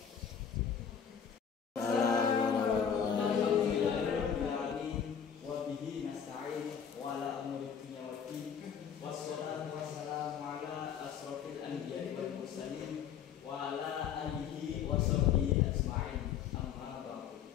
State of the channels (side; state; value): right; quieter; 7.8 dB